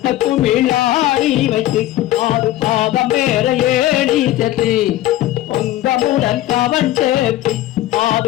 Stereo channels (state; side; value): quieter; right; 14.5 dB